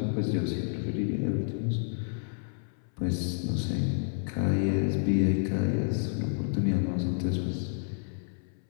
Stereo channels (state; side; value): silent; right; 58 dB below the other